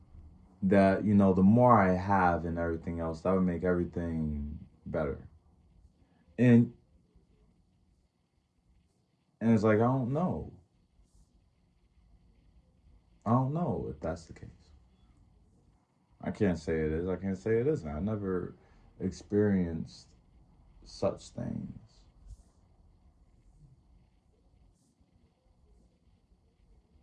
that, you know, the more I have and everything else, that would make everything better. And it's like, I don't know. I don't know if that's the case. I can't say it is. I can't say it isn't. I never experienced such things.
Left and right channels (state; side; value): identical; both; correlation 1.00